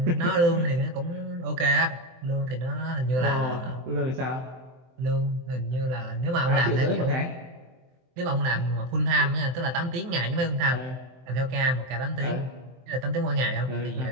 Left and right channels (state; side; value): late; left; 23 ms